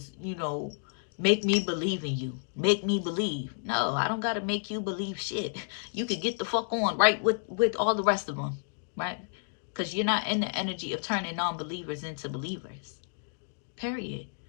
you know, make me believe in you. Make me believe. No, I don't got to make you believe shit. You could get the fuck on right with all the rest of them, right? Because you're not in the energy of turning non-believers into believers. Period.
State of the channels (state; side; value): silent; right; digital silence